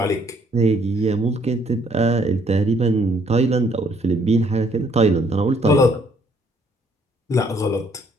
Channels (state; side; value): normal; both; correlation 0.66